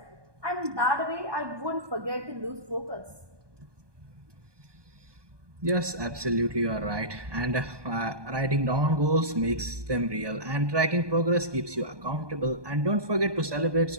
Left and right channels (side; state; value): left; late; 1.2 ms